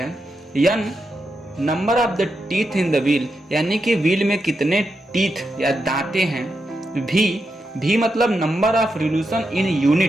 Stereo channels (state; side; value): normal; both; correlation 0.86